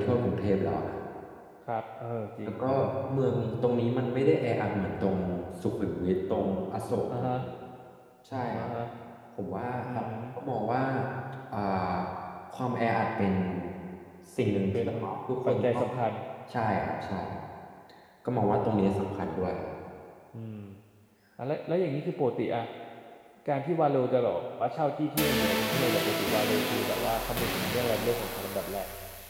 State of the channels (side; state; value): both; identical; correlation 1.00